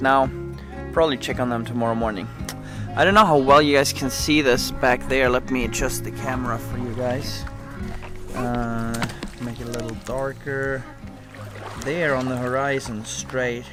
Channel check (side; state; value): both; identical; correlation 1.00